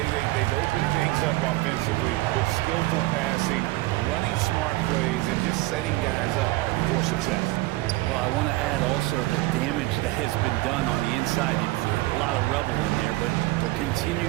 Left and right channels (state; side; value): quieter; left; 19.8 dB